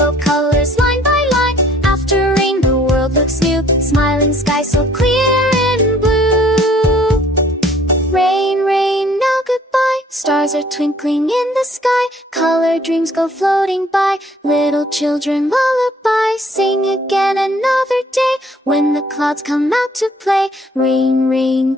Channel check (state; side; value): normal; both; correlation 0.59